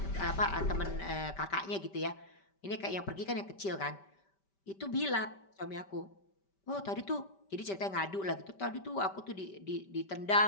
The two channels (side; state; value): right; late; 5.1 ms